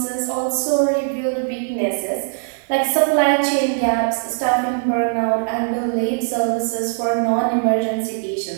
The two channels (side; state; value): left; silent; digital silence